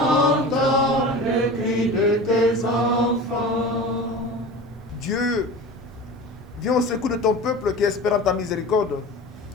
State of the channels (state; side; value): normal; both; correlation 0.33